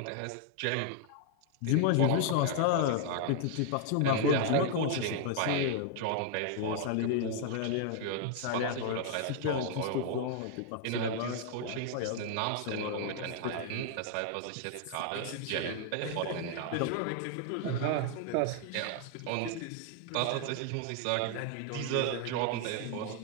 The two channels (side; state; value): both; different; correlation 0.00